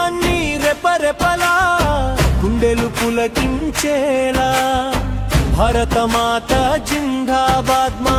రెపరెపలా గుండెలు పులకించేలా. భారతమాత జిందాబాద్ మా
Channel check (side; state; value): both; identical; correlation 1.00